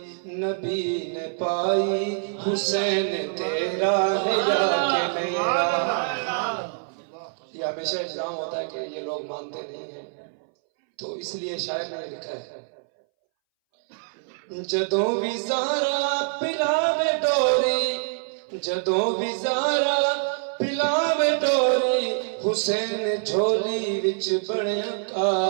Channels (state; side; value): silent; left; 62 dB below the other